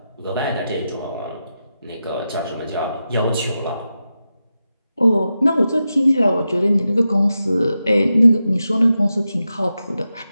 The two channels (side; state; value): both; inverted; correlation -0.90